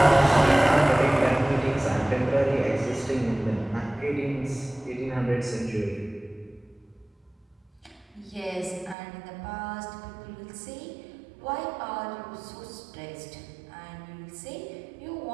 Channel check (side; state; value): left; drops out; at 9.0 s